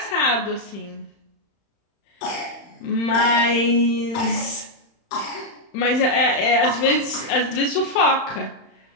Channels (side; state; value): right; late; 35 ms